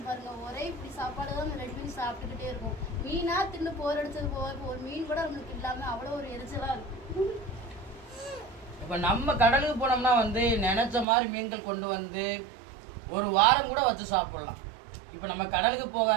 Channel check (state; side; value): drops out; left; at 11.1 s